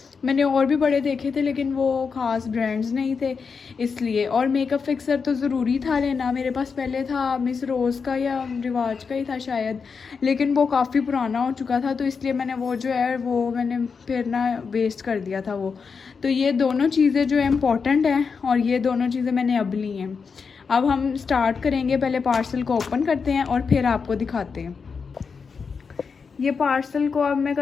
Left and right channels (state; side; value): quieter; right; 5.5 dB